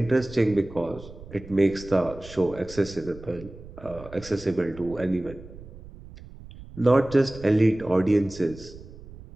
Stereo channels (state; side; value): noise; right; rumble, 17 dB below the sound